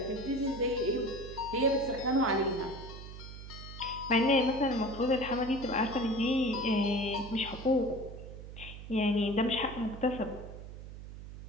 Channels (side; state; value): right; noise; hum, 12 dB below the sound